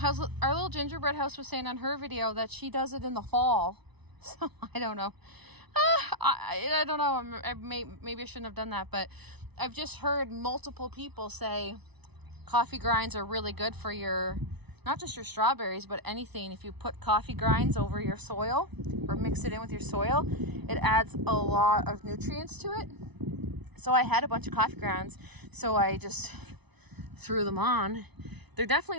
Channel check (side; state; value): left; late; 0.99 ms